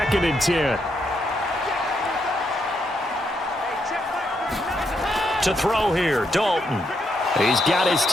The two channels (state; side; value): normal; both; correlation 0.79